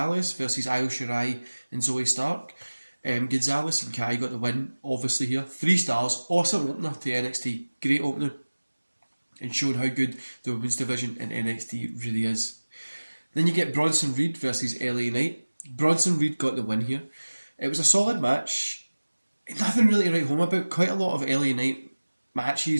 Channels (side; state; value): both; inverted; correlation -1.00